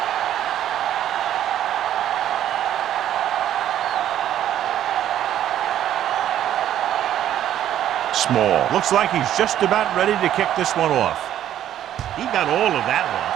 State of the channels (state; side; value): quieter; left; 11.4 dB